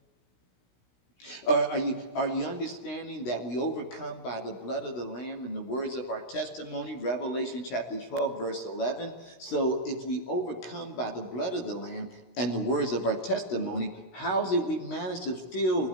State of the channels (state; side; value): late; right; 16 ms